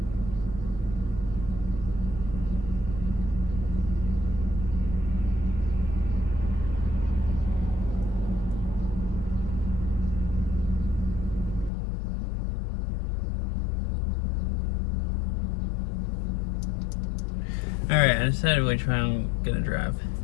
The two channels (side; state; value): right; drops out; at 11.7 s